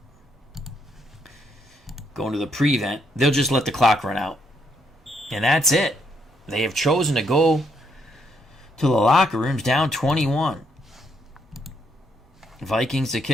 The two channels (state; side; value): normal; both; correlation 0.74